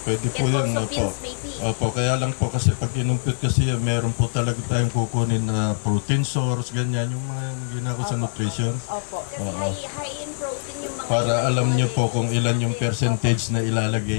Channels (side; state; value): right; silent; 63 dB below the other